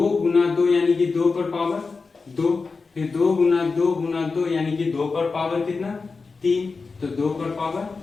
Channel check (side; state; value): right; quieter; 4.4 dB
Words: गुना 2 यानी कि 2 पर पावर 2, फिर 2 गुना 2 गुना 2 यानी कि 2 पर पावर कितना 3, तो 2 पर पावर